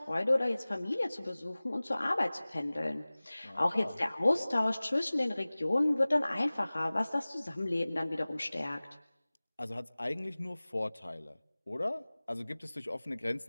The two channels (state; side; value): inverted; both; correlation -0.99